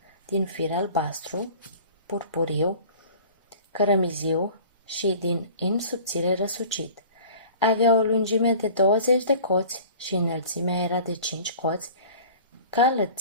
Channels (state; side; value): inverted; both; correlation -0.44